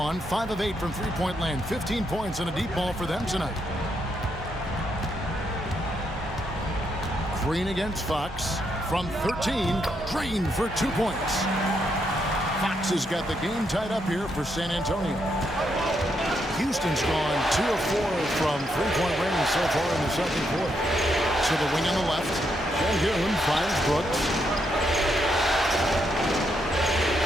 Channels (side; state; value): both; normal; correlation 0.78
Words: 5 of 8 from three-point land, 15 points and a deep ball for them tonight. Green against Fox from 13, Green for 2 points. Fox has got the game tied up here for San Antonio. Houston's gone 2 of 4 from three-point range so far in the second quarter. To the wing on the left, Sengun finds Brooks.